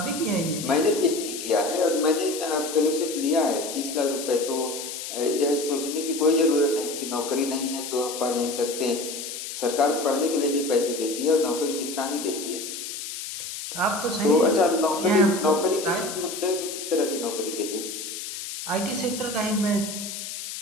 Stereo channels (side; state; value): left; noise; hiss, 7 dB below the sound